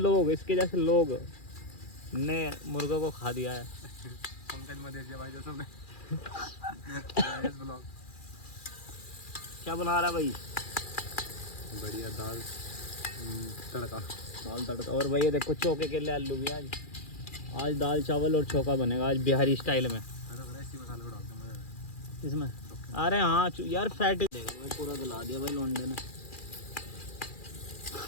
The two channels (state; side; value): late; right; 2.4 ms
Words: जैसे लोग ने मुर्गा को खा दिया है। पंकज मदेशिया भाई जो तुमने क्या बना रहा भाई? बढ़िया दाल तड़का। और भाई ये देखो चौके के लिए आलू भी। आज दाल चावल और चौका बनेगा आज बिहारी स्टाइल में। इसमें अरे हाँ यार, फैट पूरा गला दिया भाई लौंडे ने।